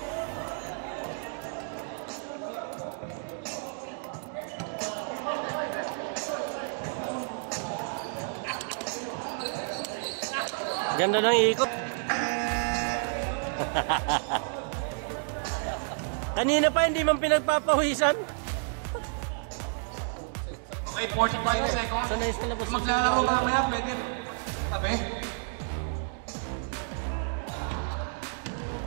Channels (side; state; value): left; silent; 58 dB below the other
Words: Ganda ng ikot. Kanina pa hindi man pinagpapawisan. Okay, 45 seconds. Sanay sa labas sa maglalaro sigala. mamaya, pwede. Tabi.